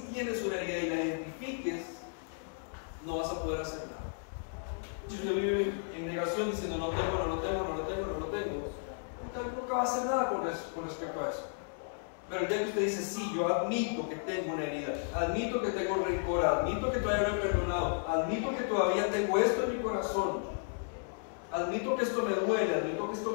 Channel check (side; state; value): right; silent; digital silence